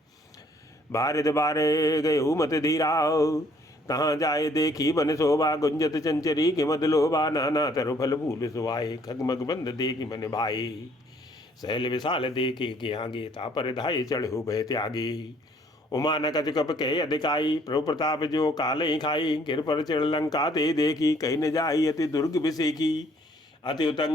बारिद बारे गए मत धीरा तहाँ जाए देखी बन शोभा गुंजत चंचरी के मद लोभा नाना तरु फल फूल सुवाए खगमग बंद देखी मन भाई सहल विशाल देखे के आगे तापर धाये चढ़ो भय त्यागी उमा न कच कप के अधिकाई प्रभु प्रताप जो काल ही खाई गिर पर चढ़ लंका ते देखी कहीं न जाई अति दुर्ग विषेकी अति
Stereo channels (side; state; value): both; normal; correlation 0.62